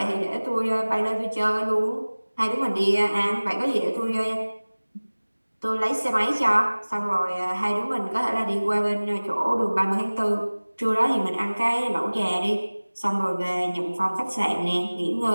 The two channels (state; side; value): inverted; both; correlation -1.00